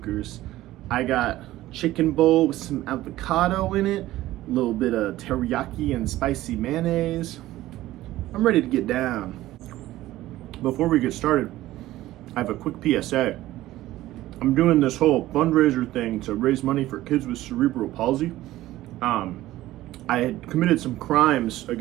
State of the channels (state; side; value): quieter; left; 15.7 dB